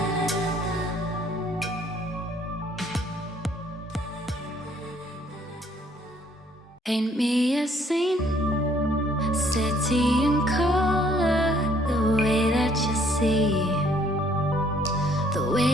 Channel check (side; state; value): both; normal; correlation 0.63